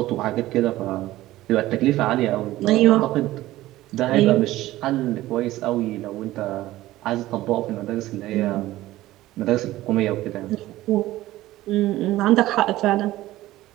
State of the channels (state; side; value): quieter; left; 16.1 dB